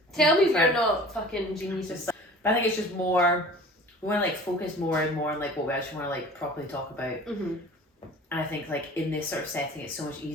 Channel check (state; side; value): normal; both; correlation 0.44